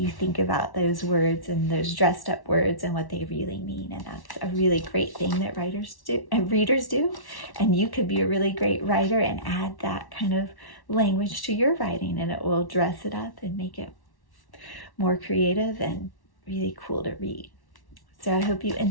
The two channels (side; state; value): right; late; 1.1 ms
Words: think about those words and those dressed up words and what they really mean. And that's a really great thing that readers do. And you could be a really great writer and add that kind of language to your writing, and it will dress it up and make it more creative and really cool to read. So I hope you